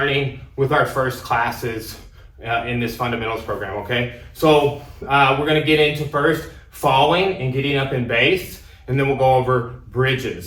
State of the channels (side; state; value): both; identical; correlation 1.00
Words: with our first classes in this fundamentals program, okay? So we're gonna get into first falling and getting up in base, and then we'll go over